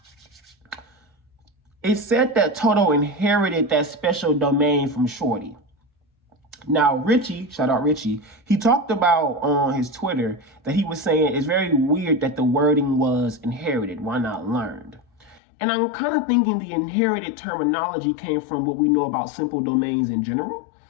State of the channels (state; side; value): drops out; right; at 15.4 s